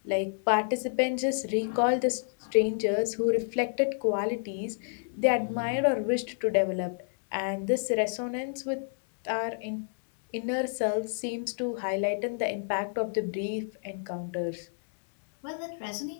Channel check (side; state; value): right; silent; 58 dB below the other